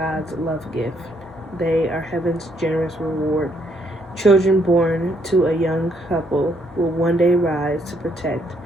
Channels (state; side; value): normal; both; correlation 0.71